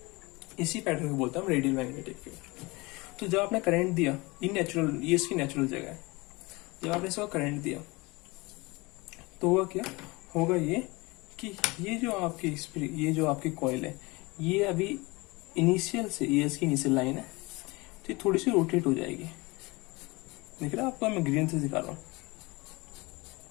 इसी पैटर्न को बोलते हैं हम रेडियल मैग्नेटिक फील्ड। तो जब आपने करंट दिया, ये नेचुरल, ये इसकी नेचुरल जगह है, जब आपने इसको करंट दिया तो होगा क्या, होगा ये कि ये जो आपकी कॉइल है, ये अभी इनिशियल से, ये इसकी इनिशियल लाइन है, तो ये थोड़ी सी रोटेट हो जाएगी। देख रहे हैं आपको, मैं ग्रीन से दिखा रहा हूँ।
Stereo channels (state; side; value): quieter; right; 24.4 dB